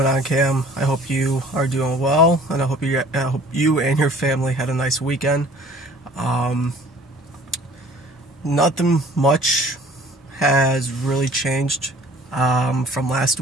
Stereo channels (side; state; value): both; normal; correlation 0.51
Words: on, Cam? I hope you are doing well, and I hope you and your family had a nice weekend. Um, Nothing much has really changed from last